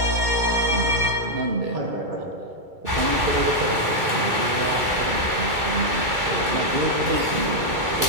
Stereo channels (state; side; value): late; left; 2.3 ms